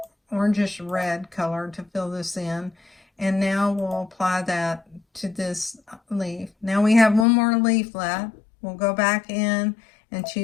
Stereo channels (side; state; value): right; drops out; at 7.2 s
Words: orangish red color to fill this in, and now we'll apply that to this leaf. Now we have one more leaf left. We'll go back in and